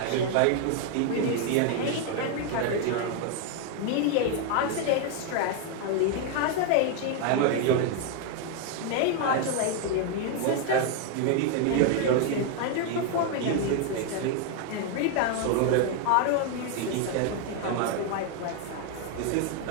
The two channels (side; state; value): both; different; correlation 0.01